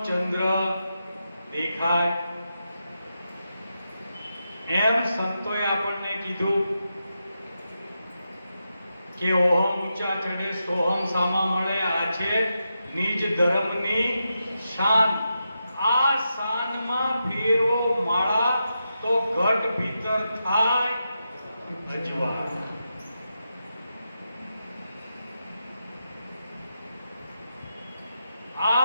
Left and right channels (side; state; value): both; inverted; correlation -0.87